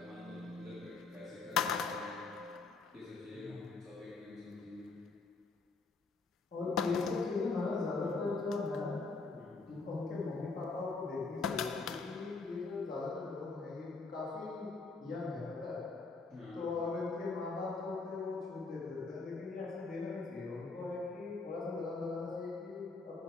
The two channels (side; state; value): right; quieter; 4.1 dB